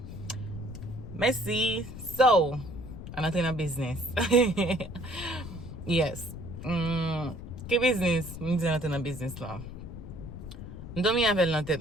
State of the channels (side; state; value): left; noise; rumble, 11 dB below the sound